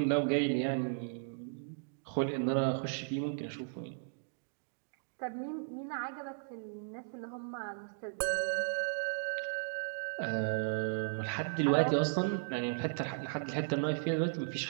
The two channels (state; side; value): silent; left; digital silence